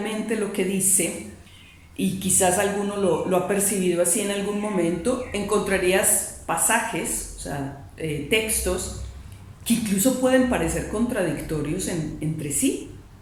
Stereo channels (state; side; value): identical; both; correlation 1.00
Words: lo que dice, y quizás alguno lo ha percibido así en algún momento, encontrarías pasajes, o sea, textos que incluso pueden parecer contradictorios entre sí.